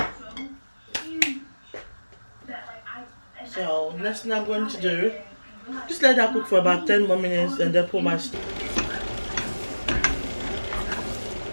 So next thing I'm going to do, just let that cook for about 10 more minutes and then put my so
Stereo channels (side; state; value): both; inverted; correlation -1.00